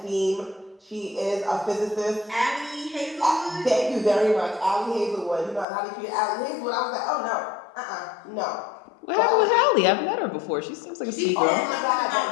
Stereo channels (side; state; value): right; drops out; at 5.7 s